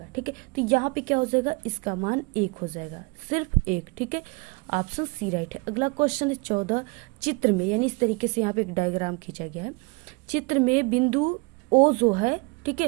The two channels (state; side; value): quieter; left; 28.9 dB